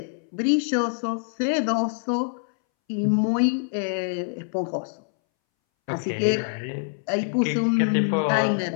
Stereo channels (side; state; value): right; silent; 62 dB below the other